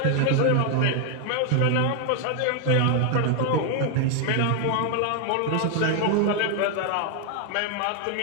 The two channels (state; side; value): different; both; correlation 0.00